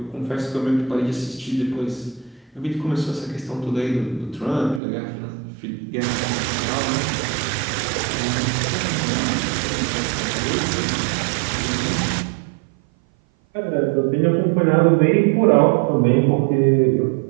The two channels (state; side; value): drops out; left; at 4.8 s